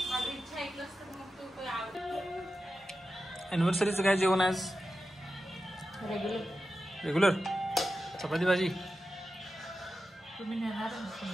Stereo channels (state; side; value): normal; both; correlation 0.91